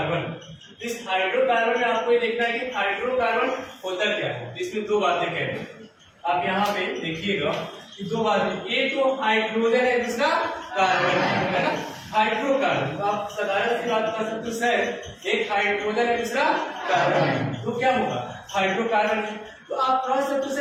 इस हाइड्रोकार्बन में आपको ये देखना है कि हाइड्रोकार्बन होता क्या है। इसमें दो बातें कह रहे हैं, आप यहाँ पे देखिएगा कि दो बातें, एक तो हाइड्रोजन है, दूसरा कार्बन है ना। हाइड्रोकार्बन तो आप साधारण सी बात कर सकते हो सर, एक हाइड्रोजन है दूसरा कार्बन है, तो क्या होगा हाइड्रोकार्बन है। तो आप कह सकते हो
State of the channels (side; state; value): both; identical; correlation 1.00